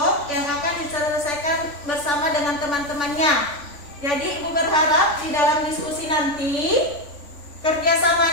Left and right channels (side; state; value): right; late; 3.5 ms